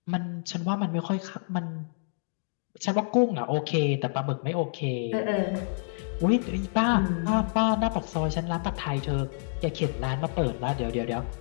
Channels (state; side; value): silent; right; digital silence